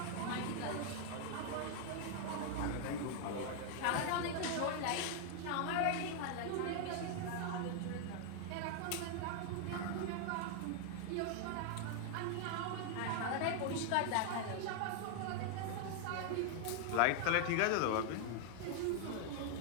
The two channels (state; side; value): different; both; correlation 0.00